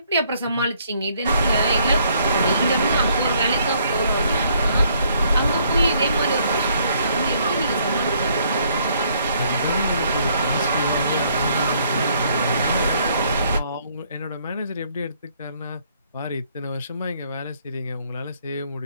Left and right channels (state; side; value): inverted; both; correlation -0.67